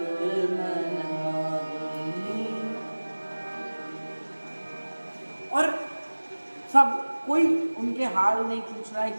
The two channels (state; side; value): inverted; both; correlation -1.00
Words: मन माही। और सब कोई उनके हाल नहीं पूछ रहा है